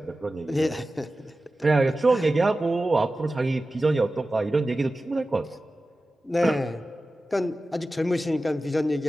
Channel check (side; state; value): both; normal; correlation 0.95